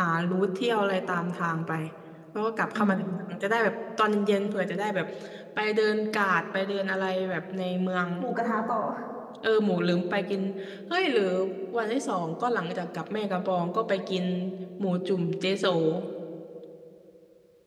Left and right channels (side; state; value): both; identical; correlation 1.00